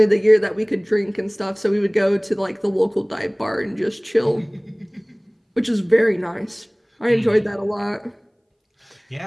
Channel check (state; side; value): identical; both; correlation 1.00